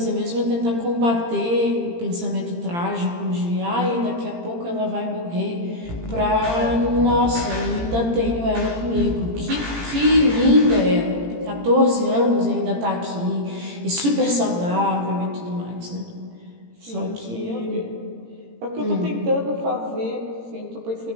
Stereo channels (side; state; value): left; late; 18 ms